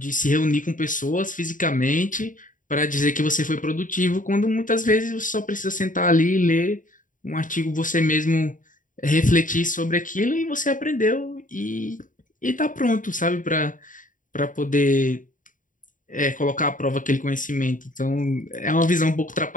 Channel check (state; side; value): late; right; 0.38 ms